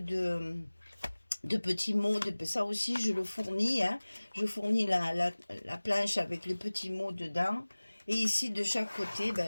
petits mots, ça aussi je le fournis, hein. Je fournis la planche avec les petits mots dedans. Et ici de chaque côté,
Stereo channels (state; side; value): inverted; both; correlation -1.00